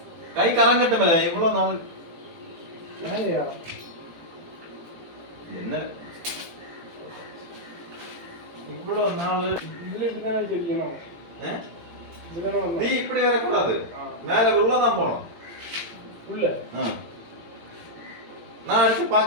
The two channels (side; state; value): left; late; 18 ms